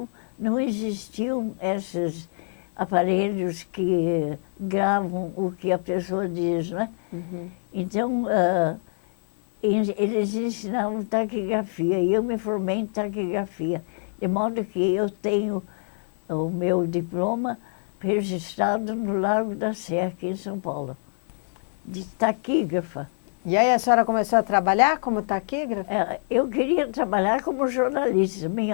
não existiam esses aparelhos que gravam o que a pessoa diz, né? Então, eles ensinavam taquigrafia e eu me formei em taquigrafia, de modo que eu tenho o meu diploma registrado no Largo da Sé, aqui em São Paulo, de taquígrafa. E aí a senhora começou a trabalhar como taquígrafa? Eu queria trabalhar como jornalista.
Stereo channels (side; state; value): right; silent; digital silence